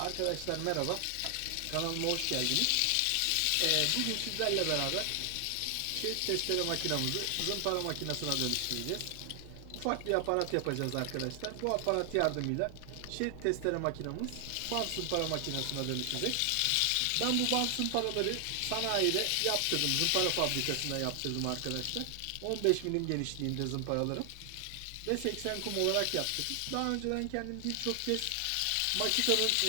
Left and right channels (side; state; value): both; different; correlation 0.00